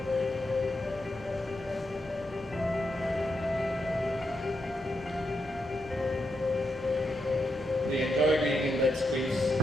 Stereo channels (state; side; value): normal; both; correlation 0.84